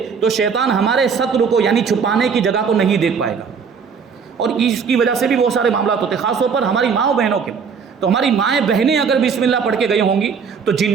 تو شیطان ہمارے ستر کو یعنی چھپانے کی جگہ کو نہیں دیکھ پائے گا, اور اس کی وجہ سے بھی بہت سارے معاملات ہوتے ہیں, خاص طور پر ہماری ماں بہنوں کے. تو ہماری مائیں بہنیں اگر بسم اللہ پڑھ کے گئی ہوں گی تو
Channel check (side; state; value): left; quieter; 6.1 dB